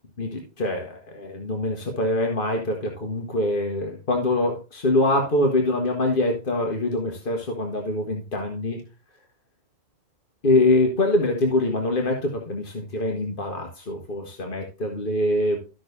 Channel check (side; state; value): right; late; 2.5 ms